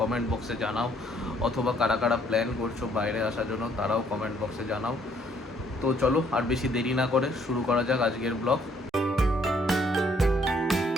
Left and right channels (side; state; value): both; normal; correlation 0.66